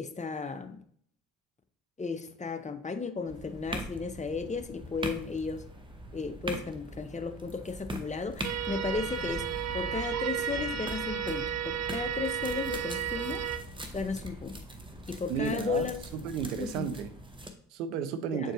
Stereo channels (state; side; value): normal; both; correlation 0.36